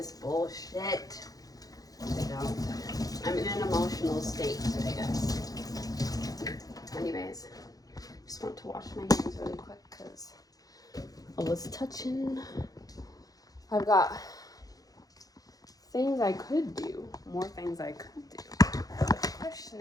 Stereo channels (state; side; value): late; right; 0.18 ms